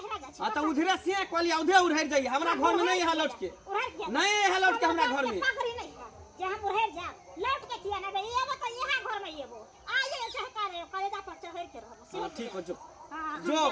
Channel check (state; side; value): identical; both; correlation 1.00